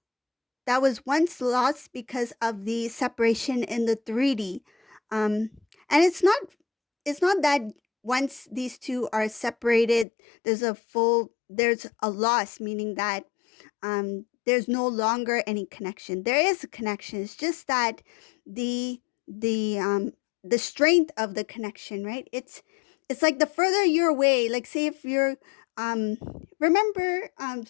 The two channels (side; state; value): right; drops out; at 10.1 s